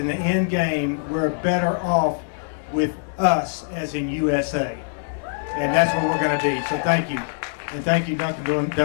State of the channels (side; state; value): right; silent; digital silence